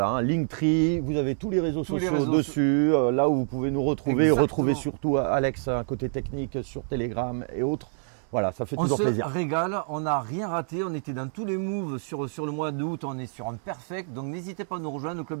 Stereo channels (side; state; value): left; silent; digital silence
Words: Linktree, vous avez tous les réseaux Tous les sociaux réseaux dessus, là où vous pouvez nous retrouver, Exactement. retrouver surtout Alex, un côté technique sur Telegram et autres. Voilà, ça fait On toujours se plaisir. régale, on n'a rien raté, on était dans tous les moves sur le mois d'août, on est sur un perfect, donc n'hésitez pas à nous rejoindre au